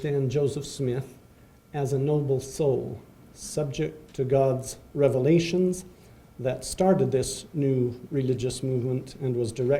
Joseph Smith as a noble soul, subject to God's revelations that started this new religious movement and was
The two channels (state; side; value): identical; both; correlation 1.00